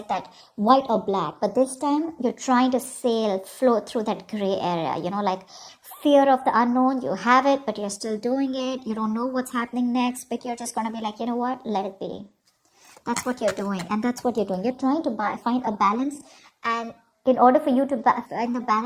that white or black. But this time, you're trying to float through that gray area, like... Fear of the unknown, you have it, but you're still doing it. You don't know what's happening next, but you're just going to be like, you know what? Let it be. That's what you're doing, and that's what you're doing. You're trying to find a balance, and in order for you to find the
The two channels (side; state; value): both; identical; correlation 1.00